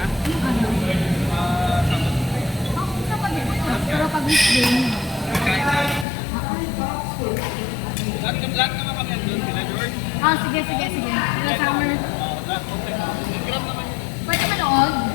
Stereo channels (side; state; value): right; drops out; at 6.1 s